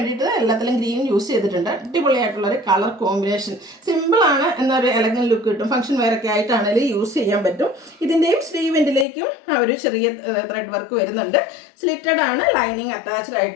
എല്ലാത്തിലും ഗ്രീൻ യൂസ് ചെയ്തിട്ടുണ്ട്. അടിപൊളിയായിട്ടുള്ളൊരു കളർ കോമ്പിനേഷൻ. സിമ്പിളാണ് എന്നൊരു എലഗൻ ലുക്ക് കിട്ടും. ഫംഗ്ഷൻ വെയറൊക്കെ ആയിട്ടാണെങ്കിലും യൂസ് ചെയ്യാൻ പറ്റും. ഇതിൻ്റെയും സ്ലീവെൻറ്റിലേക്കും ആ ഒരു ചെറിയ ത്രെഡ് വർക്ക് വരുന്നുണ്ട്. സ്ലിറ്റഡ് ആണ്, ലൈനിങ് അറ്റാച്ച്ഡ്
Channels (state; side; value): drops out; right; at 9.1 s